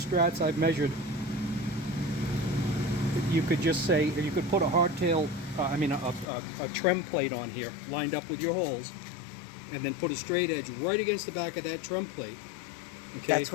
I've measured, you could just say, you could put a hardtail, a trim plate on here, lined up with your holes, and then put a straight edge right against the back of that trim plate. Okay. That's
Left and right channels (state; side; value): drops out; right; at 6.2 s